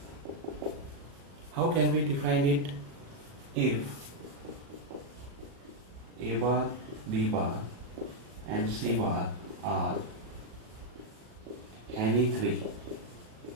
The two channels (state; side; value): late; left; 37 ms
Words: How can we define it? If A bar, B bar and C bar are any three